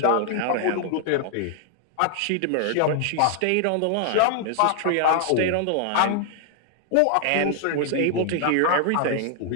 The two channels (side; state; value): both; different; correlation 0.00